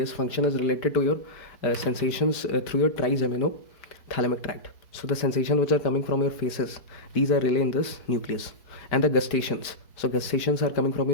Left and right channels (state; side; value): late; right; 4.6 ms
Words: function is related to your sensations through your trigeminal thalamic tract. So the sensations which are coming from your faces, these are really in this nucleus. And the gustations. So gustations are coming from